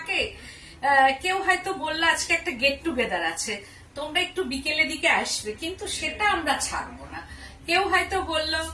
কেউ হয়তো বললো আজকে একটা গেট টুগেদার আছে, তোমরা একটু বিকেলের দিকে আসবে, কিন্তু সেটা আমরা ছাড়বো না। কেউ হয়তো বললো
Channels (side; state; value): both; identical; correlation 1.00